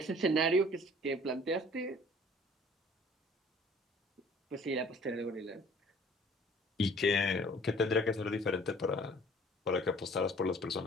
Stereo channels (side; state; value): both; normal; correlation 0.52